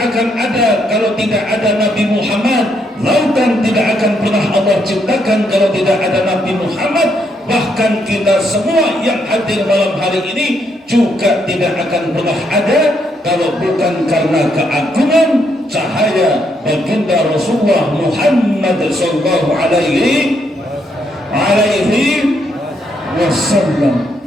akan ada kalau tidak ada Nabi Muhammad. Lautan tidak akan pernah Allah ciptakan kalau tidak ada Nabi Muhammad. Bahkan kita semua yang hadir malam hari ini juga tidak akan pernah ada kalau bukan karena keagungan cahaya baginda Rasulullah Muhammad sallallahu alaihi wasallam.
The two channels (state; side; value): normal; both; correlation 0.75